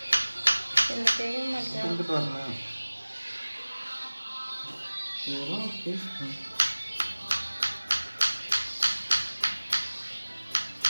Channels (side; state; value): both; inverted; correlation -1.00